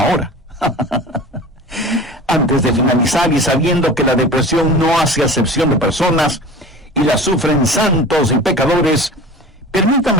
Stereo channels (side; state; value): both; normal; correlation 0.38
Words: Antes de finalizar y sabiendo que la depresión no hace acepción de personas y la sufren santos y pecadores,